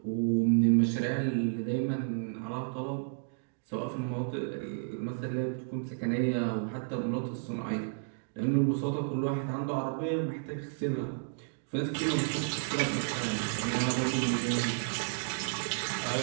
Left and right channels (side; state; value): left; silent; digital silence